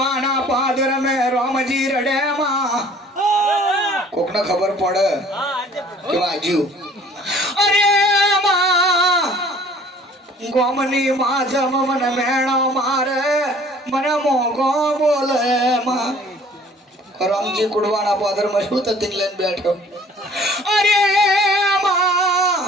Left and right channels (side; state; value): both; normal; correlation 0.52